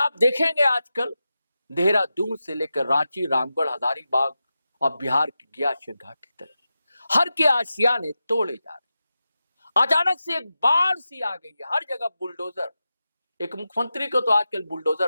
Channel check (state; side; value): inverted; both; correlation -0.92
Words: देखेंगे आजकल देहरादून से लेकर रांची, रामगढ़, हजारीबाग और बिहार की गयाशर घाटी तक हर के आशियाने तोड़े जा रहे। अचानक से एक बाढ़ सी आ गई है, हर जगह बुलडोजर। एक मुख्यमंत्री को तो आजकल